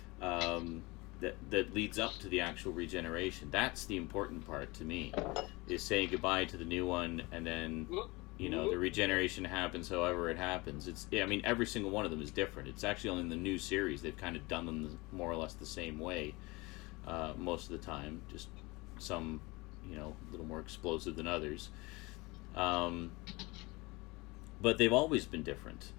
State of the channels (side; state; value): right; quieter; 23.9 dB